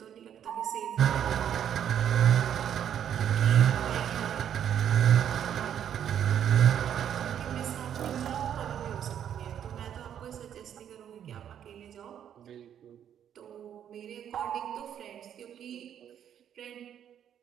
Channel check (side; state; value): left; quieter; 9.5 dB